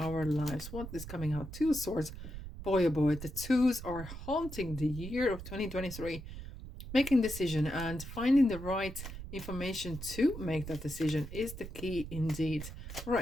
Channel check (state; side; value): noise; right; rumble, 10 dB below the sound